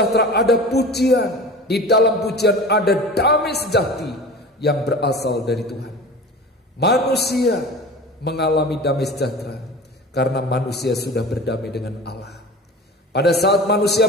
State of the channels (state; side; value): normal; both; correlation 0.36